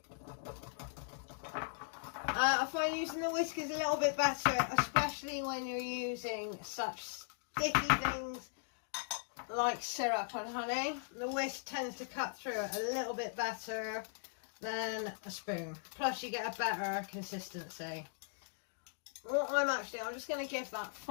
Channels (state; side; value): silent; right; digital silence